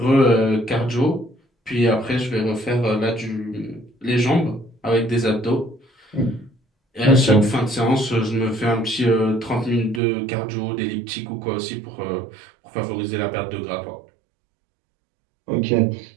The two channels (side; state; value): left; drops out; at 10.0 s